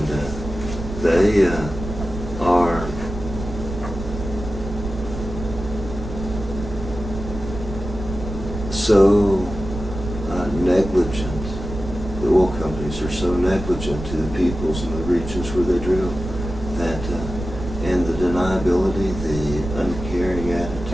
they are so negligent. The oil companies are so negligent to the peoples in the regions where they drill that, and the deniability, the uncaring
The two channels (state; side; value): noise; right; rumble, 8 dB below the sound